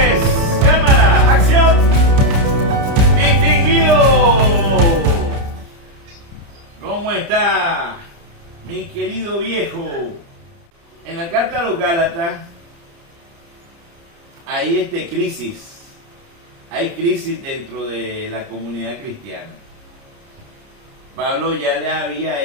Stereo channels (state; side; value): late; left; 29 ms